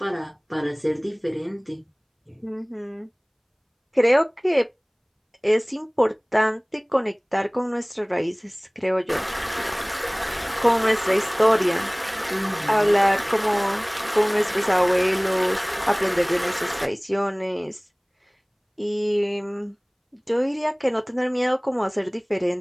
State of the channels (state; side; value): identical; both; correlation 1.00